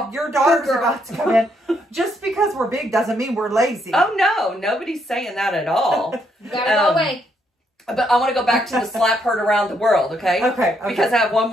Your daughter's about to come in. Just because we're big doesn't mean we're lazy. Oh no, nobody's saying that at all. You gotta go away. But I want to go back to the slap heard around the world, okay? Okay. Because I have one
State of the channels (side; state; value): both; normal; correlation 0.74